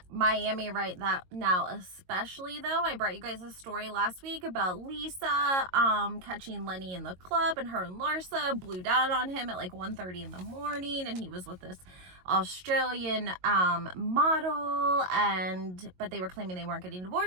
Miami right now especially though. I brought you guys a story last week about Lisa catching Lenny in the club, and her and Larsa blew down on him at like 1:30 in the morning, and he was with this Australian model, but they were claiming they weren't getting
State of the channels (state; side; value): late; left; 22 ms